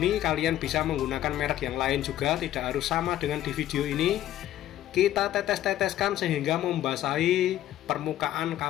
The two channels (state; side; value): quieter; right; 12.9 dB